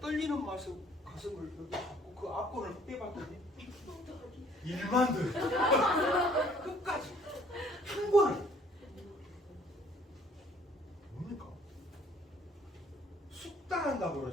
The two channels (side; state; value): both; normal; correlation 0.59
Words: 떨리는 맛에 가슴을 여기 잡고 그 앞권을 빼봤더니 1만 들어요. 끝까지 한 번을. 뭡니까? 숙달한다고